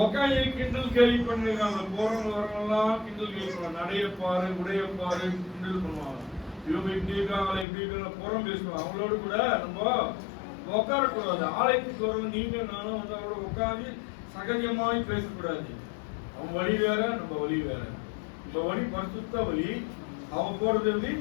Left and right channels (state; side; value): drops out; right; at 7.7 s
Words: உக்காந்து கிண்டல் கேள்வி பண்ணிருக்காங்க. போறவங்க வரவங்கலாம் கிண்டல் கேள்வி பண்ணுவாங்க. நடையப்பாரு, உடையப்பாரு கிண்டல் பண்ணுவாங்க. இவங்க இப்படி இருக்காங்களே இப்படி இருக்காங்க புறம் பேசுவாங்க. அவங்களோட கூட நம்ம உட்காரக்கூடாது. ஆலயத்துக்கு வரவங்க நீங்க நானும் அவங்களோட உட்காந்து சகஜமாய் பேசக்கூடாது. அவங்க வழி வேற, நம்ம வழி வேற. நம்ம வழி பரிசுத்த வழி, அவங்க போறது வழி